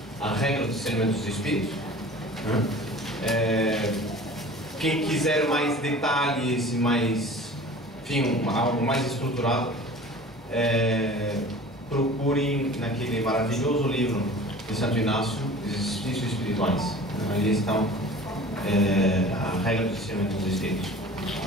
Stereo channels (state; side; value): normal; both; correlation 0.42